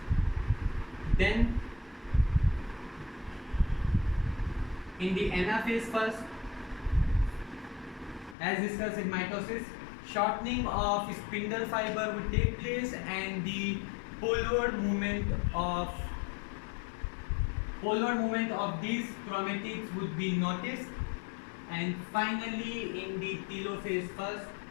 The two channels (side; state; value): right; drops out; at 8.3 s